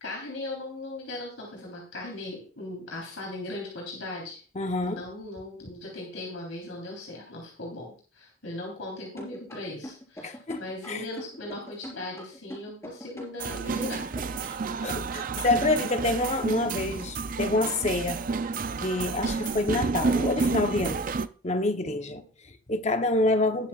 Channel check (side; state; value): both; normal; correlation 0.34